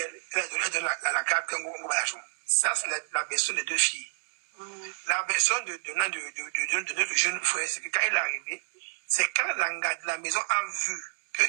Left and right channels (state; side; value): silent; left; 59 dB below the other